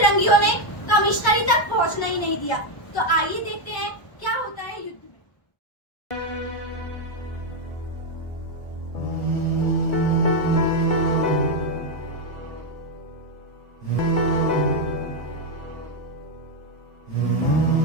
ने कमिश्नरी तक पहुंचना ही नहीं दिया। तो आइए देखते हैं क्या होता है युद्ध में।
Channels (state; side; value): late; right; 1.0 ms